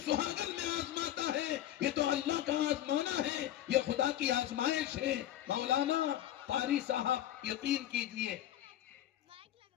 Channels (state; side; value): quieter; right; 12.6 dB